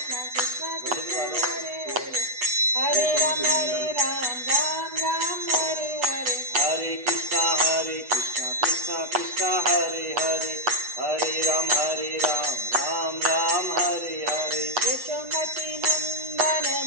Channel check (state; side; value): late; left; 8.1 ms